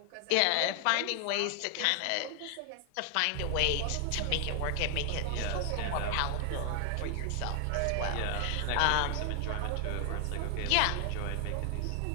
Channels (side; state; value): both; different; correlation 0.00